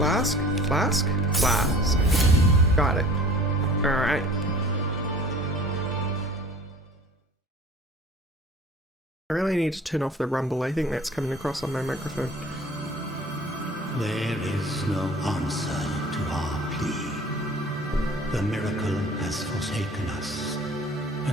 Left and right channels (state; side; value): normal; both; correlation 0.46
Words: Flask. Flask. Got it. Alright. I really need to turn off the rumble. I think that's coming across on my microphone. There is no answer to our plea. The miracle has forsaken us,